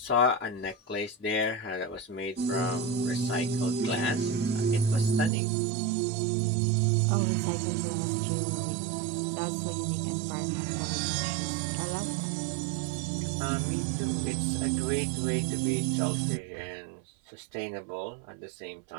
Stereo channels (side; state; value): left; drops out; at 5.3 s